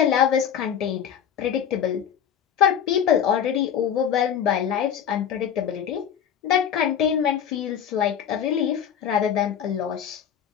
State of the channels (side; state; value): right; quieter; 8.7 dB